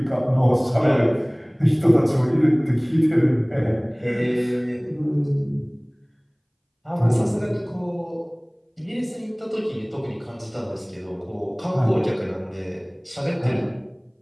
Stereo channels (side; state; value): both; identical; correlation 1.00